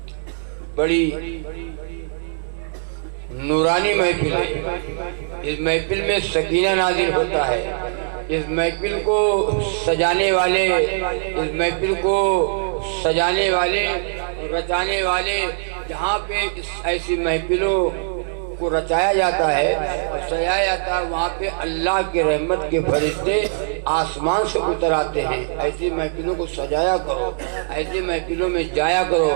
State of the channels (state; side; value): silent; left; digital silence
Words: بڑی نورانی محفل ہے، اس محفل میں سکینہ نازل ہوتا ہے، اس محفل کو سجانے والے، اس محفل کو سجانے والے، رچانے والے، جہاں پہ ایسی محفلوں کو رچایا جاتا ہے اور سجایا جاتا ہے، وہاں پہ اللہ کے رحمت کے فرشتے آسمان سے اتر آتے ہیں۔ ایسی محفلوں کو سجایا کرو، ایسی محفلوں میں جایا کرو،